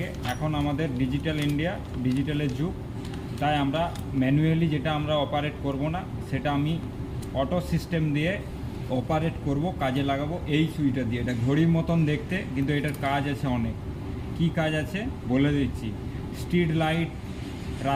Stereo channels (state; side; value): identical; both; correlation 1.00